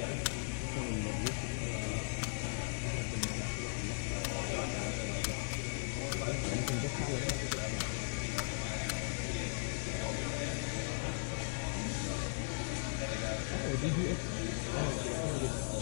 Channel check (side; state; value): right; silent; digital silence